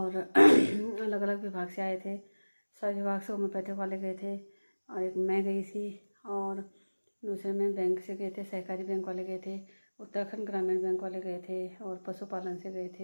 अलग अलग विभाग से आए थे। सभी विभाग से होम्योपैथिक वाले गए थे, और एक मैं गई थी, और दूसरे में बैंक से गए थे, सहकारी बैंक वाले गए थे, उत्तराखंड ग्रामीण बैंक वाले गए थे, और पशुपालन से गए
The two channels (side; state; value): both; inverted; correlation -1.00